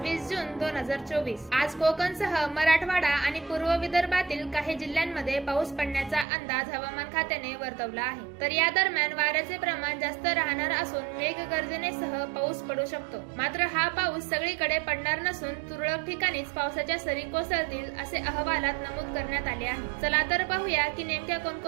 जून 2024। आज कोकणसह मराठवाडा आणि पूर्व विदर्भातील काही जिल्ह्यांमध्ये पाऊस पडण्याचा अंदाज हवामान खात्याने वर्तवला आहे। तर या दरम्यान वाऱ्याचे प्रमाण जास्त राहणार असून मेघगर्जनेसह पाऊस पडू शकतो। मात्र हा पाऊस सगळीकडे पडणार नसून तुरळक ठिकाणीच पावसाच्या सरी कोसळतील असे अहवालात नमूद करण्यात आले आहे। चला तर पाहूया की नेमक्या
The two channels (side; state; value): left; drops out; at 6.2 s